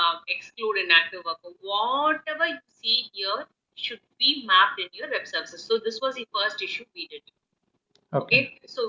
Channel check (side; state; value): both; identical; correlation 1.00